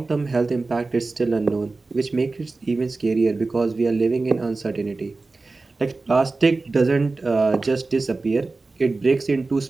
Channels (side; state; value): left; quieter; 3.6 dB